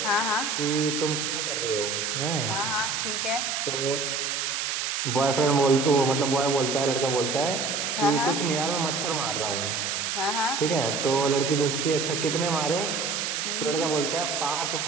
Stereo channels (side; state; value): right; noise; hiss, 1 dB below the sound